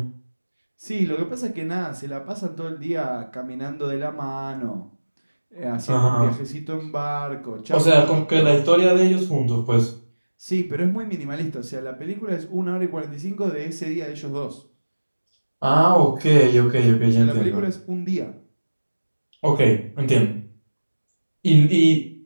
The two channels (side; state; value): both; inverted; correlation -1.00